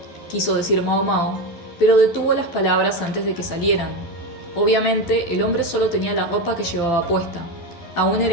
quiso decir Mao Mao, pero detuvo las palabras antes de que salieran. Obviamente, el hombre solo tenía la ropa que llevaba puesta. Aún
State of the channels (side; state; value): right; late; 12 ms